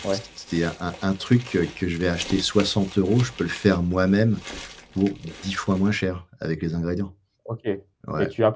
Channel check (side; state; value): both; identical; correlation 1.00